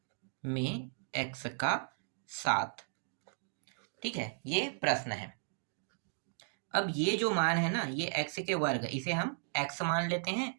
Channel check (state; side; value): silent; left; digital silence